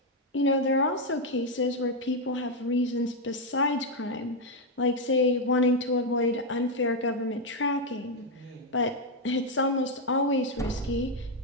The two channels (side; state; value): both; normal; correlation 0.03